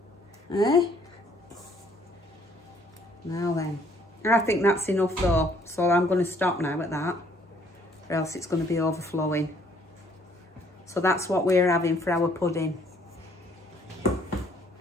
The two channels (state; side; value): normal; both; correlation 0.63